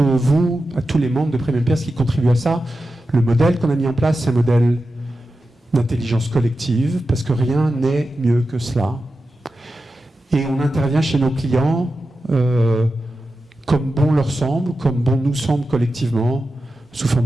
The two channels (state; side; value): normal; both; correlation 0.91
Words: vous, à tous les membres de Premium Peers qui contribuent à ça. Le modèle qu'on a mis en place, c'est un modèle d'intelligence collective, parce que rien n'est mieux que cela. Et on intervient chez nos clients comme bon leur semble, comme bon nous semble collectivement, sous